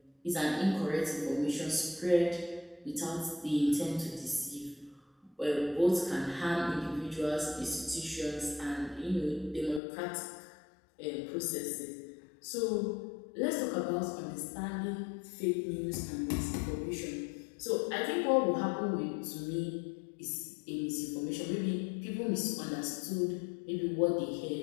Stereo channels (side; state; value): right; drops out; at 9.8 s